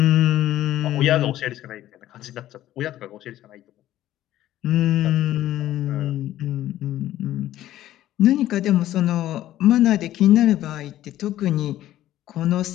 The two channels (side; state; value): right; quieter; 13.6 dB